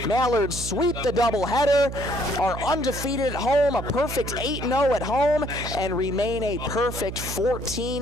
Mallards sweep the doubleheader, are undefeated at home, a perfect 8-0 at home, and remain a perfect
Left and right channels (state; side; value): noise; right; hum, 7 dB below the sound